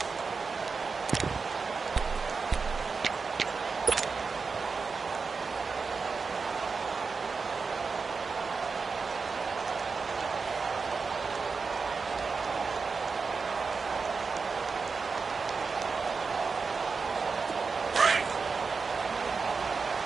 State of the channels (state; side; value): quieter; left; 4.8 dB